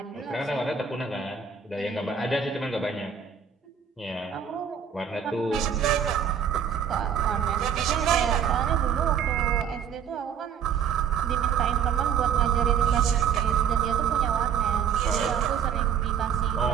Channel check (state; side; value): quieter; left; 7.6 dB